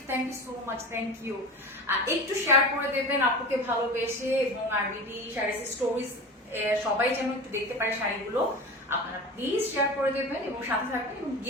so much, thank you. একটু শেয়ার করে দেবেন আপুকে ভালোবেসে, এবং আর বিডি শাড়ির স্টোরিজ সবাই যেন একটু দেখতে পারে শাড়িগুলো। আপনারা প্লিজ শেয়ার করে দেবেন এবং সাথে থাকবেন, এবং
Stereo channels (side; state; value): both; normal; correlation 0.31